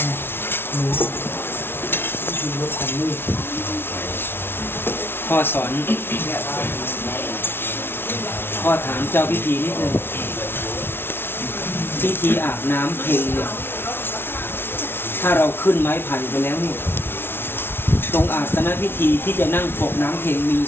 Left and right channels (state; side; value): late; right; 0.11 ms